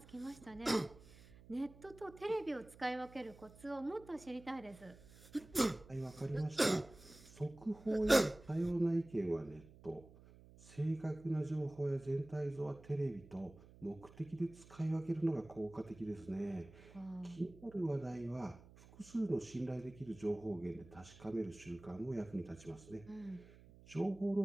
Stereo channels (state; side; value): noise; right; hum, 21 dB below the sound